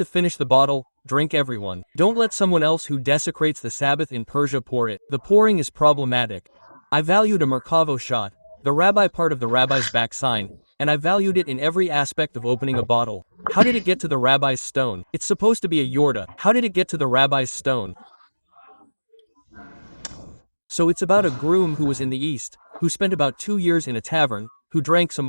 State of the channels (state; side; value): inverted; both; correlation -1.00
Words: finish the bottle, drink everyone. Don't let someone else who desecrates the Sabbath in Persia pour it. The pouring is problematic. I valued a Merkavo shot, the rabbi part of the rabbi's back sign, and I valued it in every aspect of opening a bottle. How did it get to the rabbi's stone? It's supposed to be a yorda. How did it get to the rabbi's stone? So it's about a groom who was in the East, who spent about 2 years in a tavern, who drank some